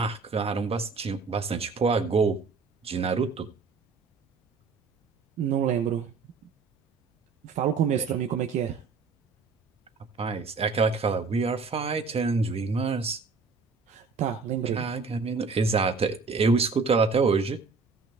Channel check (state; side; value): quieter; left; 4.7 dB